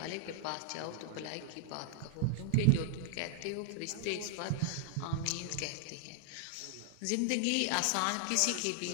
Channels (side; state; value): both; different; correlation 0.00